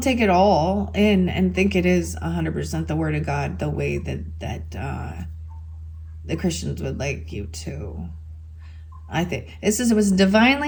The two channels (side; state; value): both; identical; correlation 1.00